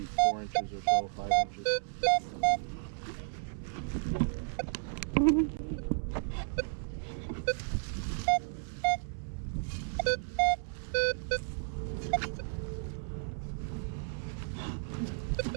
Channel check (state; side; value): silent; left; 56 dB below the other